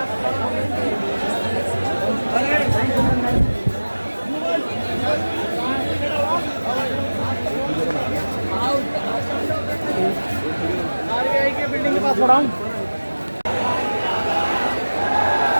आरबीआई के बिल्डिंग के पास खड़ा हूँ।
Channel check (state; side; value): inverted; both; correlation -1.00